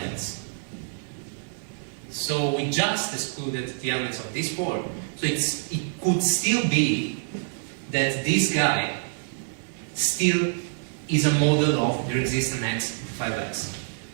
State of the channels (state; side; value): silent; left; digital silence